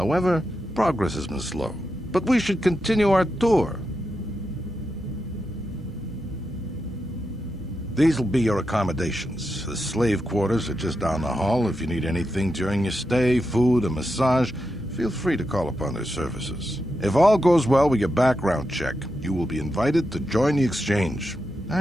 progress has been slow. But we should continue our tour. These will be your accommodations. The slave quarters are just down the hall. If you need anything during your stay, food, a massage, feel free to call upon their services. If all goes well with your background check, you will be invited to join the Exchange.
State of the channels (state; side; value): normal; both; correlation 0.87